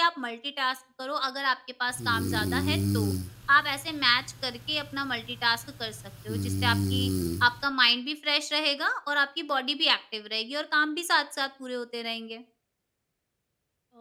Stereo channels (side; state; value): both; identical; correlation 1.00